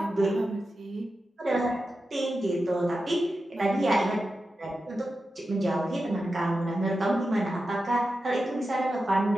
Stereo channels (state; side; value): normal; both; correlation 0.91